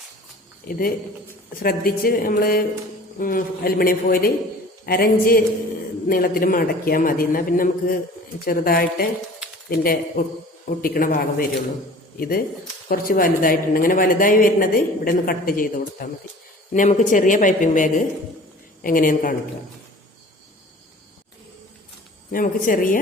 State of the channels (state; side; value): normal; both; correlation 0.45